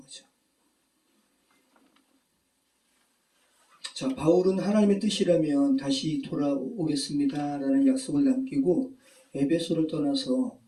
자, 바울은 하나님의 뜻이라면 다시 돌아오겠습니다 라는 약속을 남기고 에베소를 떠나서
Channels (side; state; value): both; identical; correlation 1.00